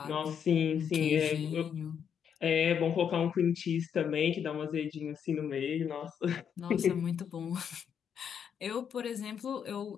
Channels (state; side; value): quieter; right; 7.9 dB